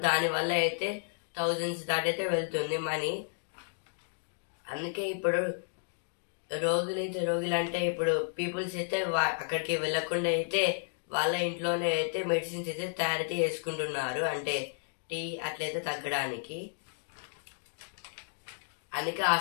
దానివల్ల అయితే థౌజండ్స్ దాటైతే వెళ్తుంది మనీ. అందుకే ఇప్పుడు రోగులు అంటే ఇప్పుడు పీపుల్స్ అయితే అక్కడికి వెళ్ళకుండా అయితే వాళ్ళ ఇంట్లోనే అయితే మెడిసిన్స్ అయితే తయారైతే చేసుకుంటున్నారు. అంటే టీ అట్లయితే తగ్గడానికి. అందుకే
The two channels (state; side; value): silent; right; digital silence